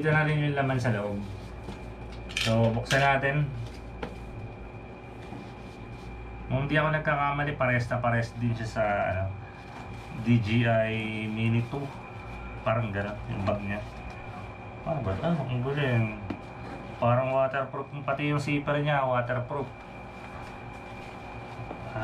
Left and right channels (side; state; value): both; identical; correlation 1.00